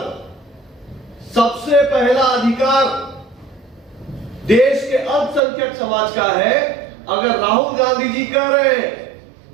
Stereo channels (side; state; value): left; drops out; at 5.4 s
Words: सबसे पहला अधिकार देश के अल्पसंख्यक समाज का है, अगर राहुल गांधी जी कह रहे हैं